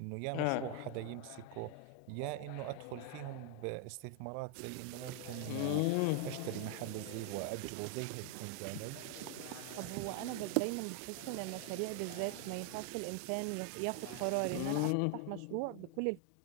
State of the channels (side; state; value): both; different; correlation 0.00